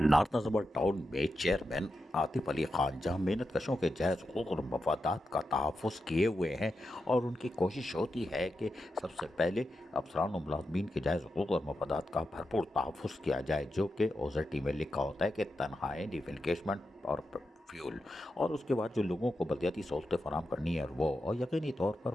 नज़र town में chairman Atif Ali Khan जहां मेहनत कशों के जायज़ हुकूक और मफादात का तहफ़्फ़ुज़ किए हुए हैं और उनकी कोशिश होती है कि सबसे पहले अफसरान और मुलाज़मीन के जायज़ हुकूक और मफादात का भरपूर तहफ़्फ़ुज़ किया जाए, जो कि ओज़ेटी में लिखा होता है कि तनख्वाहें, डिफिनकेशमेंट और फ्यूल, और उसके बाद जो लोगों को बलदियाती सहूलतें फराहम करनी है वो, और यकीनी तौर पर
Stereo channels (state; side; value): normal; both; correlation 0.88